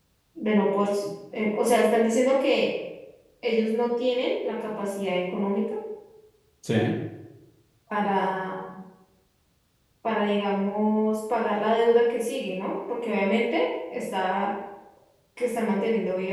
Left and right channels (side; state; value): both; identical; correlation 1.00